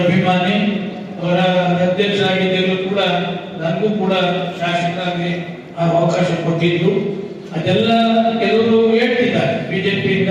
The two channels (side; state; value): both; identical; correlation 1.00